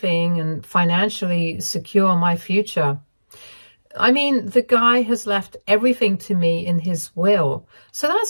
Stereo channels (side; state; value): both; inverted; correlation -1.00